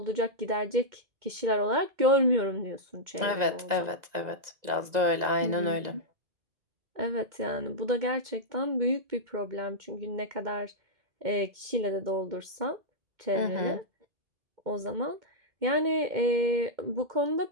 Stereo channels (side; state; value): left; late; 2.2 ms